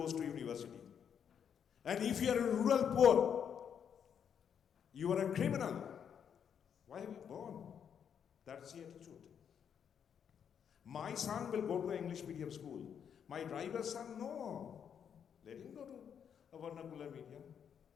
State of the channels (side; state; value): right; quieter; 8.0 dB